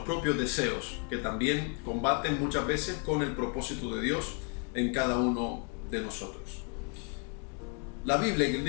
propios deseos, que también combaten muchas veces con el propósito de Dios en cada uno de nosotros. La Biblia en el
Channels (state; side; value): quieter; right; 38.2 dB